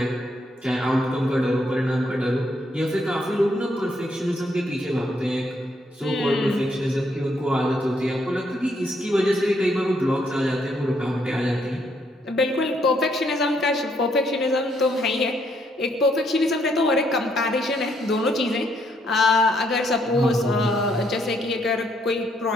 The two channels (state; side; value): normal; both; correlation 0.72